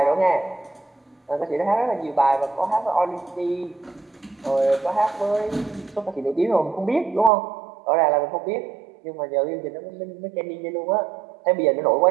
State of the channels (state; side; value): drops out; left; at 7.3 s